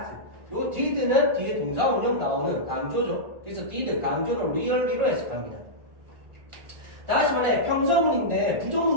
요 did는 뒤에 동사 운용 나오는 강조죠. 그래서 did 강조는 really로 해석합니다. 다시 말해 평서문인데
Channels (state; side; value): late; left; 1.9 ms